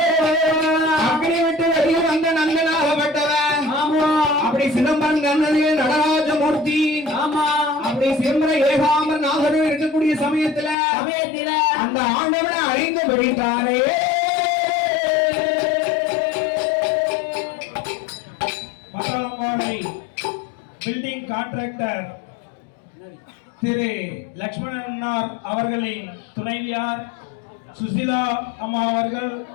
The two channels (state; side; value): drops out; right; at 10.8 s